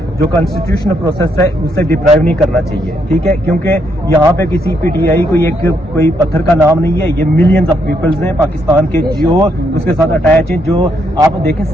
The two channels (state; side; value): normal; both; correlation 0.75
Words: جو کانسٹیٹیوشنل پروسیس ہے, اسے ڈپرائیو نہیں کرنا چاہیے. ٹھیک ہے, کیونکہ یہاں پہ کسی پی ٹی آئی کوئی پتھر کا نام نہیں ہے, یہ ملینز آف پیپلز ہیں پاکستان کے جو اس کے ساتھ اٹیچ ہیں. جو آپ دیکھیں